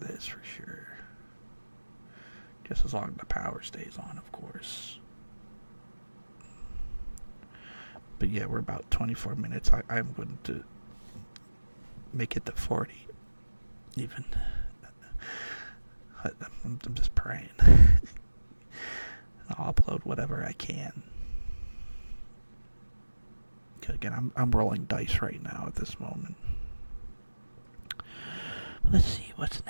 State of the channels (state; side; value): inverted; both; correlation -1.00